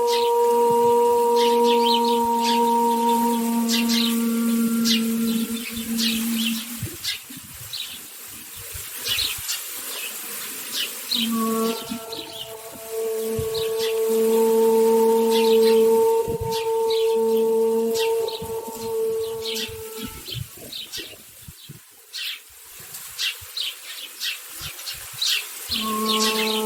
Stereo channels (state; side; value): identical; both; correlation 1.00